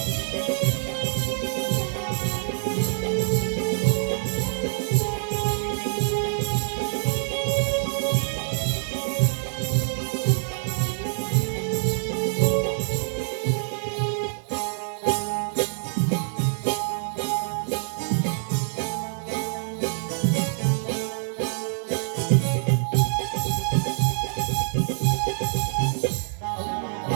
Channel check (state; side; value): silent; left; 61 dB below the other